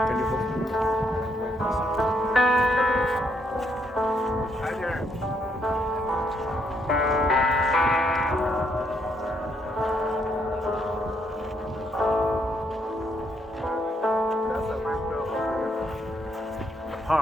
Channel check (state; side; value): normal; both; correlation 0.74